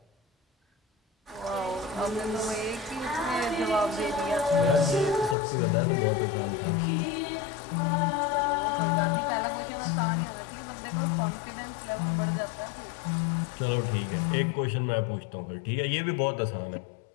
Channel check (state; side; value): drops out; right; at 5.4 s